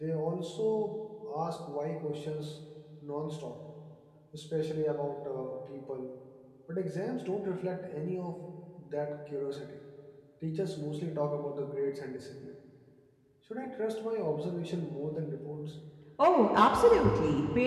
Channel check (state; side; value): identical; both; correlation 1.00